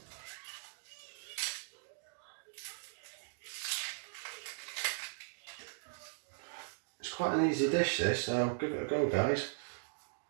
It's quite an easy dish this, so give it a go guys.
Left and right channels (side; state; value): left; silent; digital silence